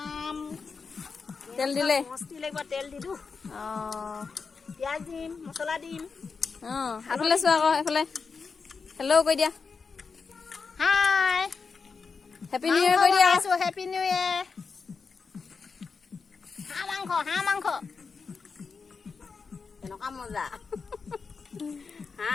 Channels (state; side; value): quieter; right; 5.1 dB